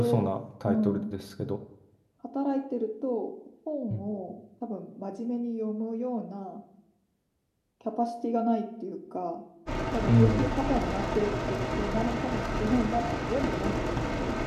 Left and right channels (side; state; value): both; identical; correlation 1.00